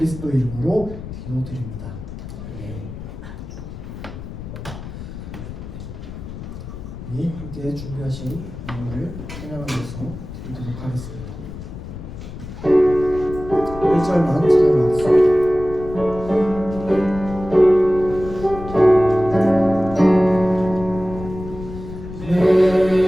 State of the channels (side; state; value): left; noise; rumble, 11 dB below the sound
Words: 이름으로 기도드립니다. 네, 함께 준비하신 음악을 찬양하면서 드리도록 하겠습니다. 1절만 찬양하겠습니다.